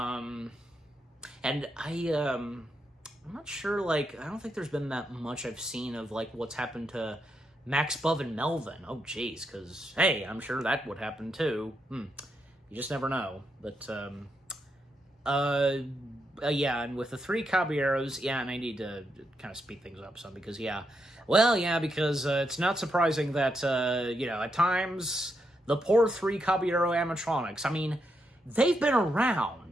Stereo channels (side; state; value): both; normal; correlation 0.82